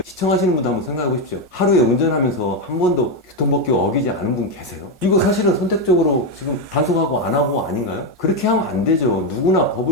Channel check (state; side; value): normal; both; correlation 0.07